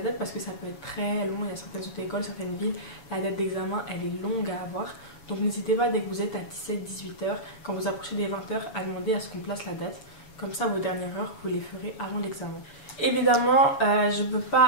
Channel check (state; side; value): late; right; 7.1 ms